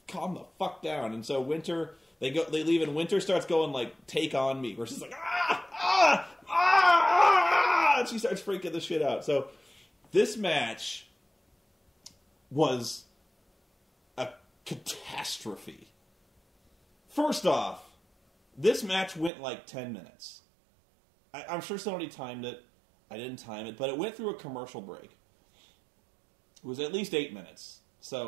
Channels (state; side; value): drops out; left; at 19.3 s